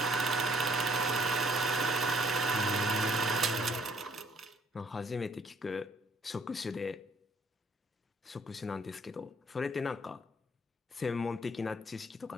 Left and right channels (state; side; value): normal; both; correlation 0.62